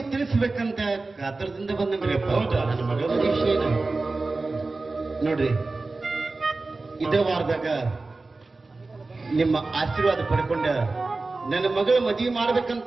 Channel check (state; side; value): quieter; left; 3.5 dB